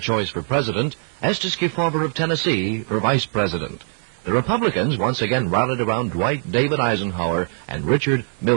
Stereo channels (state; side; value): silent; left; 65 dB below the other